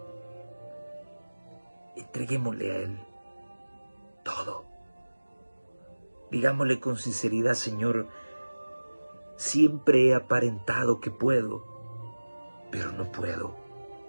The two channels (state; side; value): inverted; both; correlation -1.00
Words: Entreguémosle a Él todo. Digámosle con sinceridad, Señor, siempre he aparentado que puedo, pero no puedo.